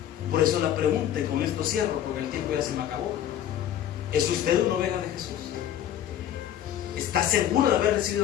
Por eso la pregunta, y con esto cierro porque el tiempo ya se me acabó: ¿es usted una oveja de Jesús? ¿Está seguro de haber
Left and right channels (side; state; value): right; quieter; 10.9 dB